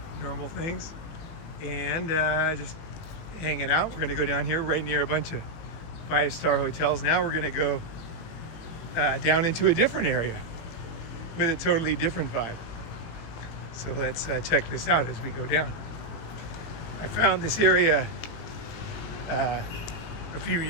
Normal things. And just hanging out. We're gonna go down here right near a bunch of 5-star hotels. Now we're gonna go down into a different area with a totally different vibe. So let's check this out as we go down. I found this area a few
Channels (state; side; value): late; right; 18 ms